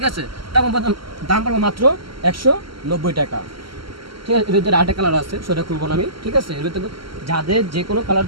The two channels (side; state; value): left; late; 0.74 ms